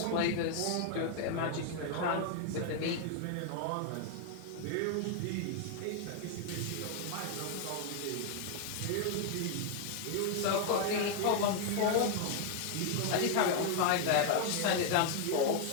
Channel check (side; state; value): both; different; correlation 0.00